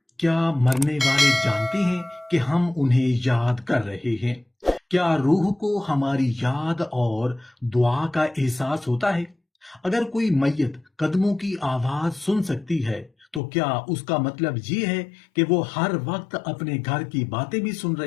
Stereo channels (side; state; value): right; drops out; at 13.4 s